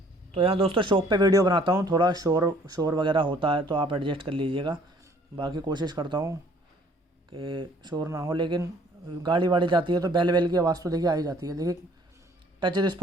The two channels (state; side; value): normal; both; correlation 0.58